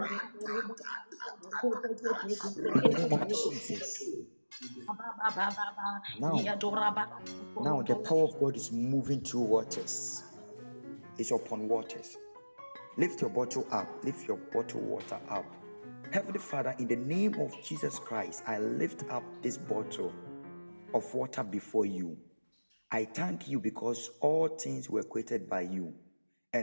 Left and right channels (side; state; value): both; inverted; correlation -1.00